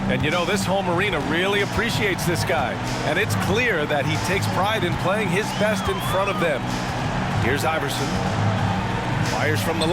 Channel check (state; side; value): identical; both; correlation 1.00